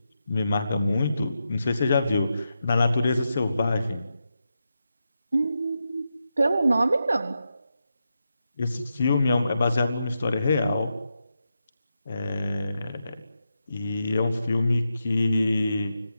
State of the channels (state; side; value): inverted; both; correlation -0.87